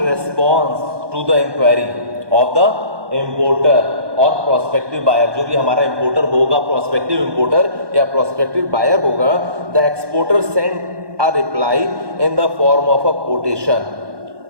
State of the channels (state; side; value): late; left; 1.2 ms